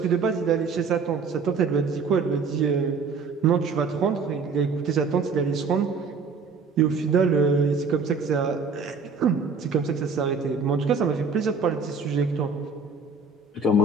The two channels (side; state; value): left; quieter; 4.8 dB